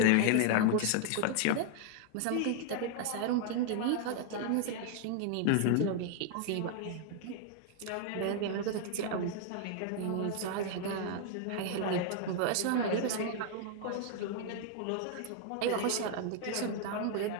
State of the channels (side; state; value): both; different; correlation 0.00